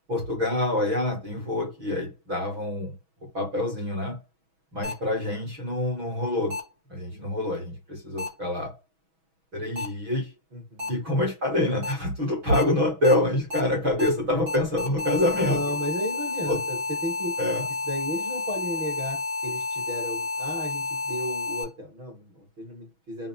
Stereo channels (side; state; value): left; late; 6.2 ms